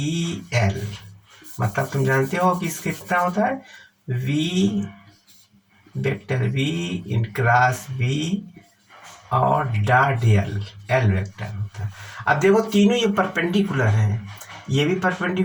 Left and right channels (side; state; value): both; identical; correlation 1.00